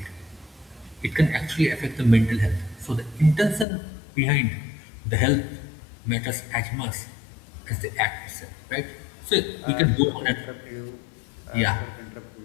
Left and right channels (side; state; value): right; drops out; at 3.7 s